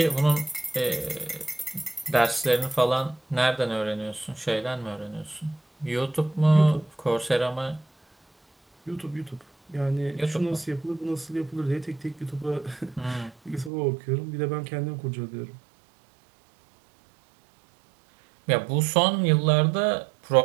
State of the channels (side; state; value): left; drops out; at 13.7 s